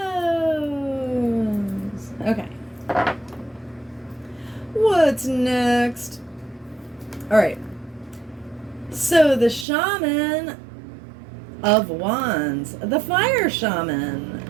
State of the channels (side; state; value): left; drops out; at 9.7 s